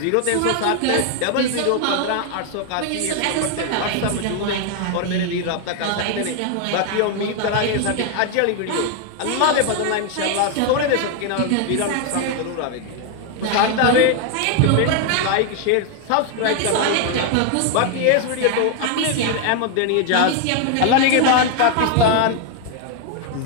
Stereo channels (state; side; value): different; both; correlation 0.00